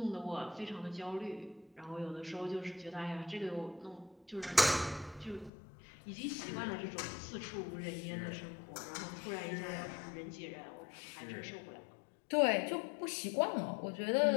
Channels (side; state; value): right; drops out; at 5.5 s